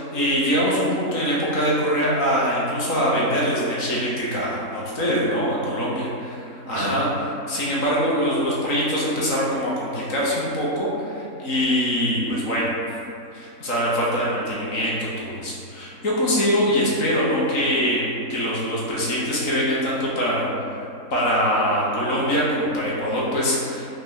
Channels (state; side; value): late; right; 3.9 ms